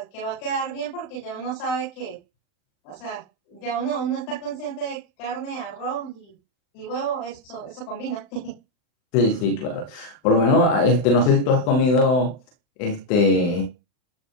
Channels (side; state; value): right; late; 39 ms